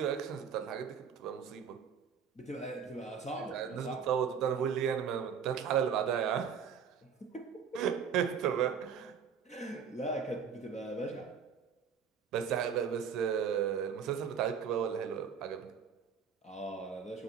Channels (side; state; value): left; quieter; 7.1 dB